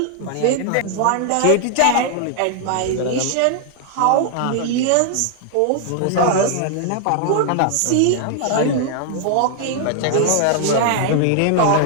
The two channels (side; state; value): both; different; correlation 0.00